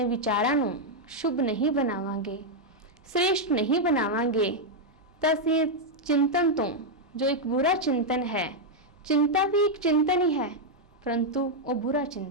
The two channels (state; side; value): normal; both; correlation -0.02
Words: विचारां नूं शुभ नहीं बनावांगे, श्रेष्ठ नहीं बनावांगे तो असी चिंतन तो जो एक बुरा चिंतन है, चिंता भी एक चिंतन ही है परंतु वो बुरा